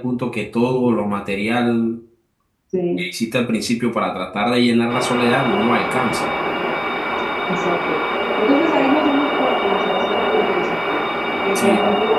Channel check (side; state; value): both; identical; correlation 1.00